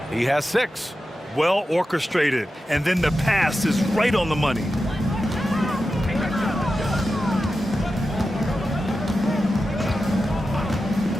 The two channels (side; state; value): both; normal; correlation 0.91